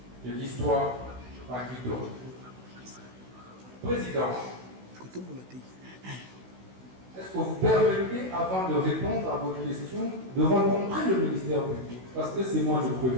De l'histoire par qui de Président, est-ce que vous permettez, avant de répondre à votre question, de rencontrer le ministère public? Parce que c'est moi le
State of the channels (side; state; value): left; late; 16 ms